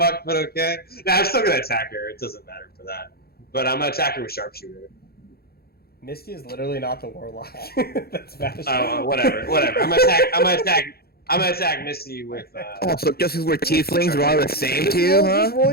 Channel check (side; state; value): right; late; 0.45 ms